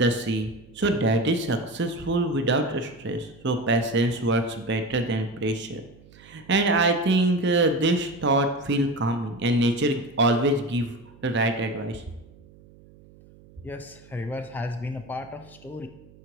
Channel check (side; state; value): right; noise; hum, 24 dB below the sound